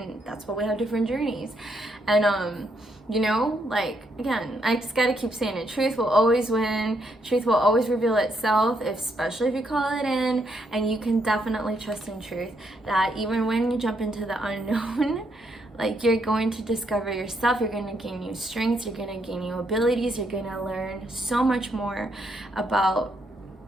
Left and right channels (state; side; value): normal; both; correlation 0.76